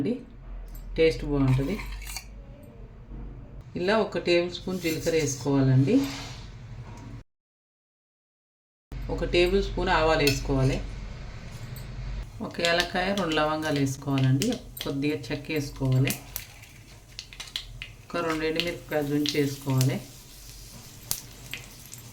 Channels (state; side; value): identical; both; correlation 1.00